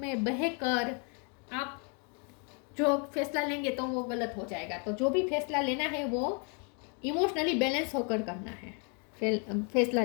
बहकर आप जो फैसला लेंगे तो वो गलत हो जाएगा। तो जो भी फैसला लेना है वो इमोशनली बैलेंस होकर करना है, फैसला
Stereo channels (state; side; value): quieter; right; 37.3 dB